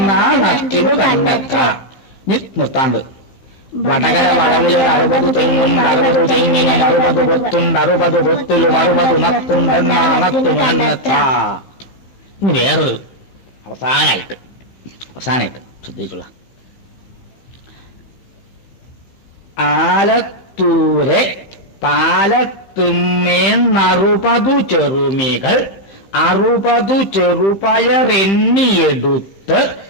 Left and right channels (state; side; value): late; right; 15 ms